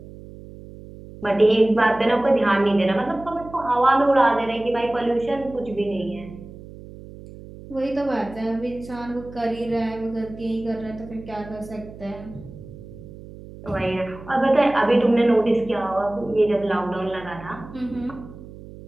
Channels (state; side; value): noise; right; hum, 16 dB below the sound